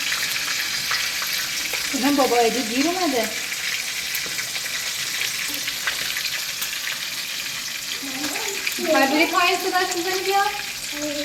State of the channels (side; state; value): both; identical; correlation 1.00